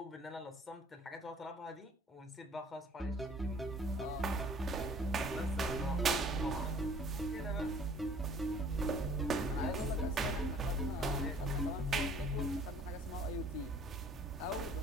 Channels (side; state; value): both; normal; correlation 0.54